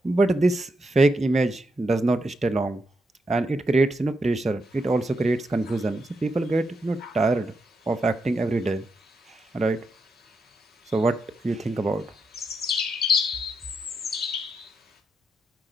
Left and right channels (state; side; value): normal; both; correlation 0.83